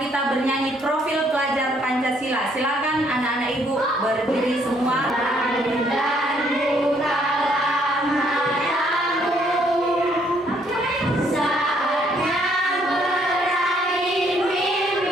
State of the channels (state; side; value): normal; both; correlation 0.67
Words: kita bernyanyi profil pelajar Pancasila. Silakan anak-anak ibu berdiri semua.